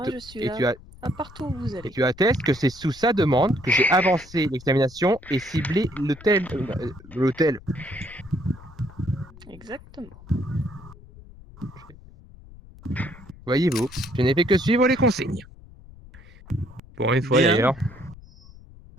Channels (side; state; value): left; noise; rumble, 20 dB below the sound